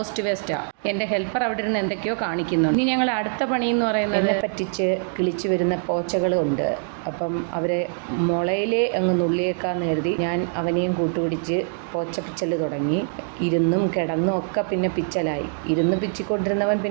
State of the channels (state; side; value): silent; left; digital silence